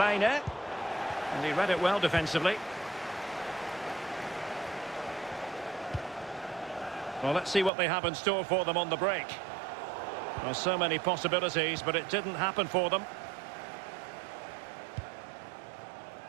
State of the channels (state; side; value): drops out; left; at 7.7 s